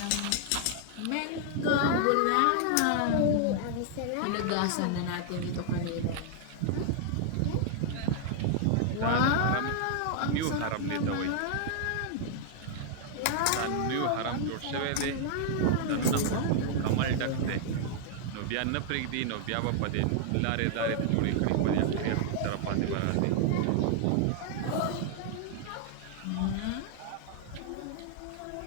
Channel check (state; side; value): different; both; correlation 0.00